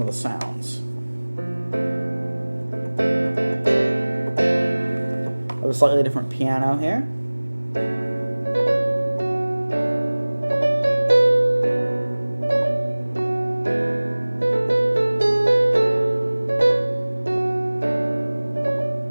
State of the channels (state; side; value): inverted; both; correlation -1.00